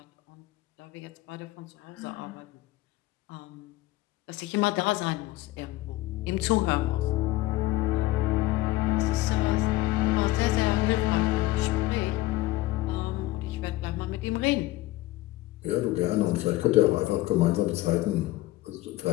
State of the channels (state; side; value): quieter; right; 17.4 dB